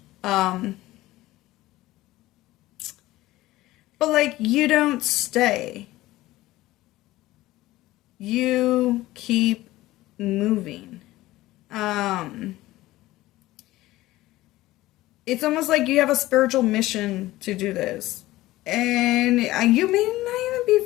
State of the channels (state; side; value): quieter; right; 17.2 dB